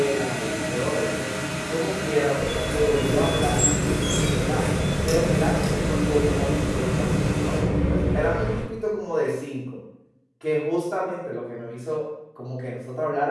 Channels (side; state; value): both; identical; correlation 1.00